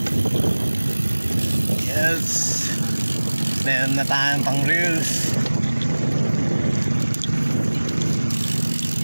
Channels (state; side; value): inverted; both; correlation -1.00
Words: Yes, meron na tayong pang reels.